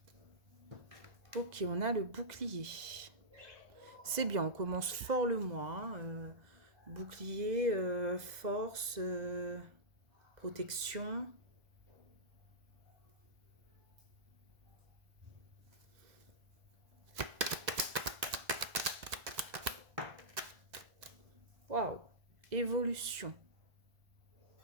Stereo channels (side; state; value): left; late; 2.0 ms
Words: Ok, on a le bouclier. C'est bien, on commence fort le mois. Bouclier, force, protection. Waouh, évolution.